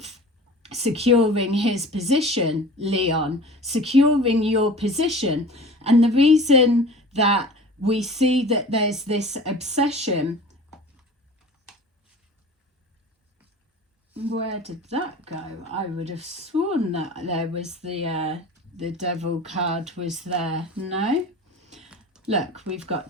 securing his position, Leon, securing your position. And the reason that we see that there's this obsession, where did that go? I would have sworn that there was the devil card was there. No? Look, we've got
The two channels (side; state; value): both; normal; correlation 0.40